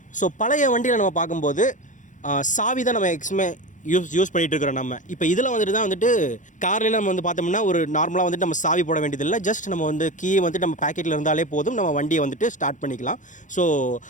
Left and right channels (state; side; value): late; right; 0.37 ms